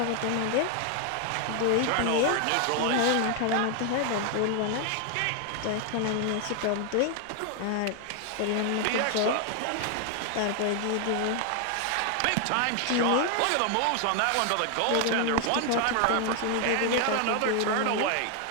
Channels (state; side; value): different; both; correlation 0.00